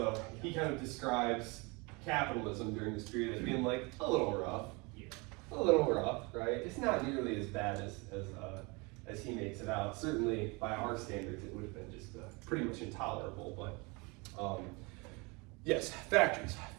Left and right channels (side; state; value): left; quieter; 27.8 dB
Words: he kind of describes capitalism during this period as being like a little rough. Yeah. A little rough, right? It's not nearly as bad as he makes it out. Certainly by our standards it would have been just pretty much intolerable, but yes,